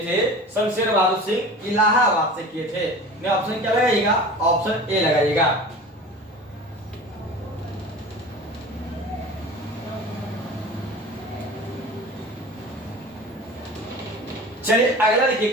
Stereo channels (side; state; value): both; normal; correlation 0.37